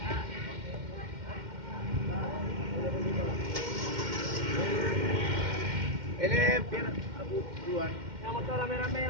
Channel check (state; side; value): late; left; 2.1 ms